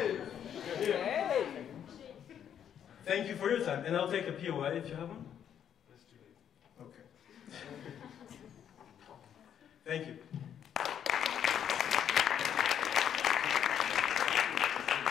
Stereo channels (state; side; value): quieter; right; 9.2 dB